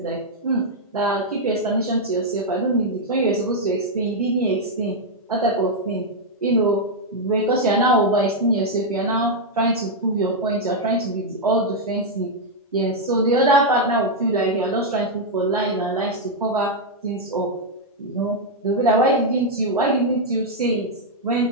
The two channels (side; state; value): both; normal; correlation -0.02